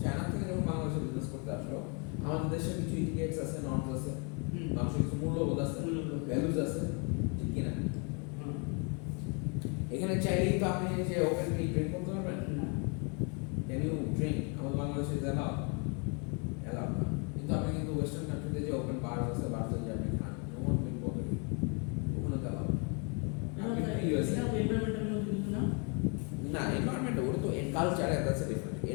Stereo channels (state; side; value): quieter; right; 35.3 dB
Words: চায়না থেকে যখন বাংলাদেশে বিজনেস করতে আসলো, আমাদের দেশে কিছু ইটিকেটস আছে, নর্মস আছে, মানুষের কিছু মূল্যবোধ আছে, ভ্যালুজ আছে, ঠিক কিনা? এখানে চাইলেই তো আপনি যে ওপেনলি ড্রিঙ্ক করতে পারবেন না। Can you drink? আমাদের বাংলাদেশে অ্যালাউ না, কিন্তু আপনি কিন্তু ওয়েস্টার্ন কান্ট্রিতে যে ওপেন বার আছে, বারতে যে আপনি খান, no one will bother you, ওখানে তো অ্যালাউ আপনি ইউএসএ না, এনভায়রনমেন্ট ওটা তো culture, that's a different.